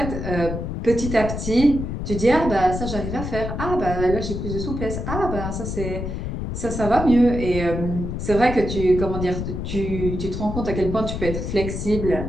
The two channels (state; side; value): noise; left; rumble, 4 dB below the sound